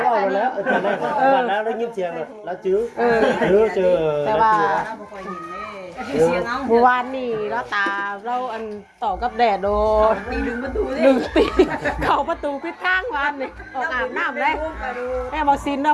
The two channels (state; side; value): identical; both; correlation 1.00